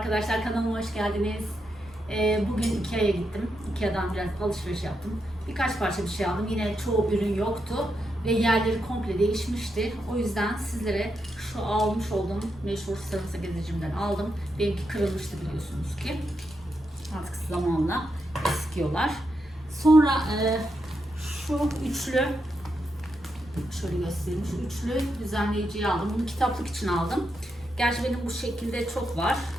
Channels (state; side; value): normal; both; correlation 0.84